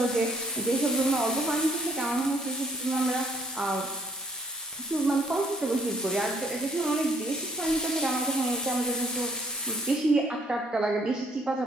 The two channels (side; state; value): both; normal; correlation 0.64